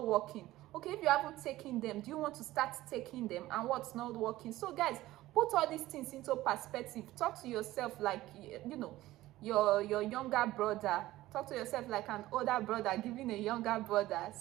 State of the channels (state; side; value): quieter; left; 16.4 dB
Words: working? Okay, if you haven't taken them, do you want to start taking them? And what's not working? So guys, put all these things into perspective. Talk to yourself like, your younger brother. Talk to yourself like an older brother giving a younger brother